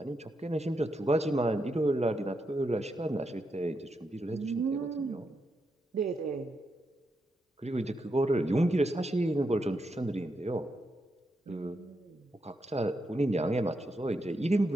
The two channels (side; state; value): both; normal; correlation 0.83